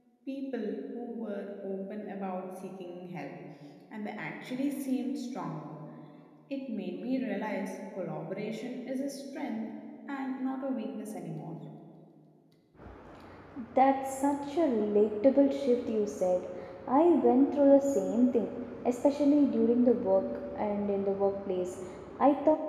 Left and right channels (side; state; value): both; identical; correlation 1.00